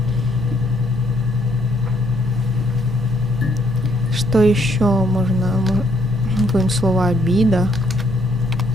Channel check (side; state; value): both; normal; correlation 0.69